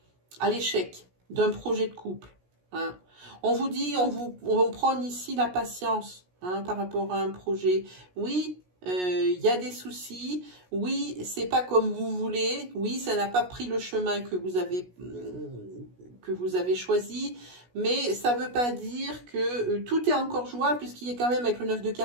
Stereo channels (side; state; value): left; late; 16 ms